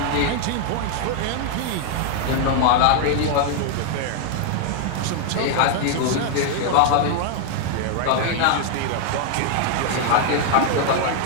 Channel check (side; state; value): both; different; correlation 0.00